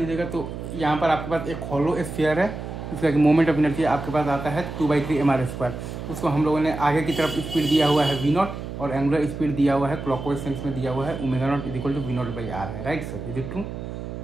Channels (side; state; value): right; noise; hum, 8 dB below the sound